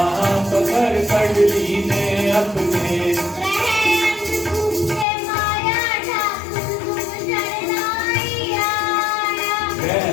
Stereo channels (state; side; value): drops out; right; at 5.1 s